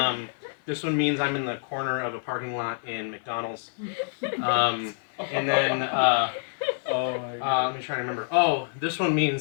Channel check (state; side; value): silent; right; digital silence